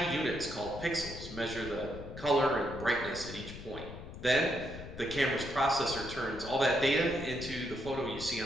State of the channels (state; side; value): noise; left; rumble, 12 dB below the sound